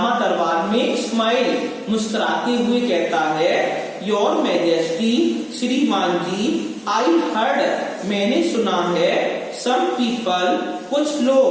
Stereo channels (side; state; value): both; identical; correlation 1.00